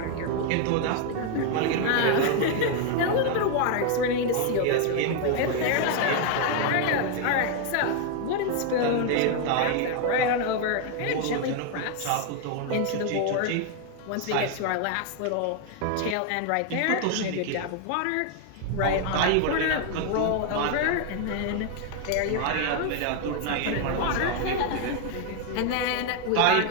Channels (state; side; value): different; both; correlation 0.01